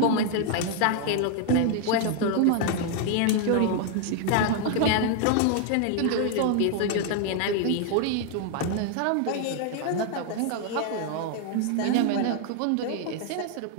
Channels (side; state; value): both; different; correlation 0.00